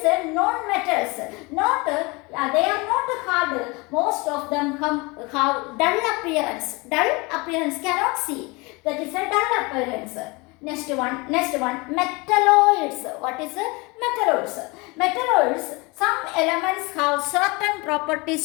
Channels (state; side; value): quieter; right; 26.1 dB